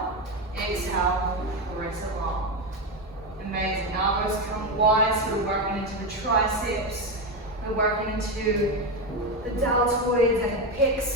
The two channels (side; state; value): both; normal; correlation 0.13